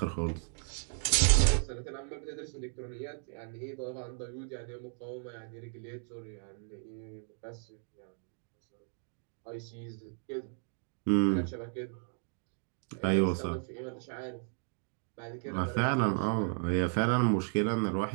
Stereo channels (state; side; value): silent; left; 55 dB below the other